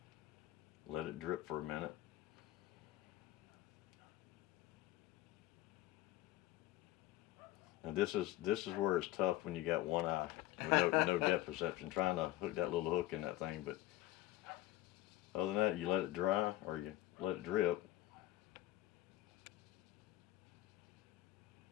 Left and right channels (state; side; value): quieter; right; 15.7 dB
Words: Let it drip for a minute. Now this is where it's tough when you got one eye, with no depth perception, trying to hook that little hook in that thing. But other than that, you let it dry or you let it drip.